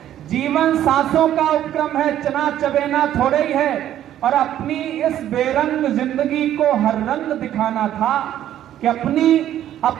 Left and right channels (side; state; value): left; quieter; 11.7 dB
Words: जीवन सांसों का उपक्रम है, चना चबेना थोड़े ही है। और अपनी इस बेरंग जिंदगी को हर रंग दिखाना था। कि